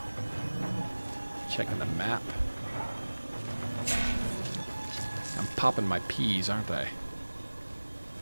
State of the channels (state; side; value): inverted; both; correlation -1.00